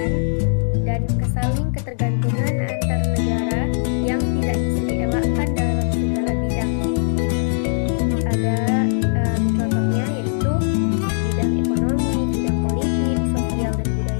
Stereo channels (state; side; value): silent; right; digital silence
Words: dan kesaling ketergantungan antar negara yang tidak bisa dielakkan dalam segala bidang. Ada contohnya yaitu bidang ekonomi, bidang politik, sosial, dan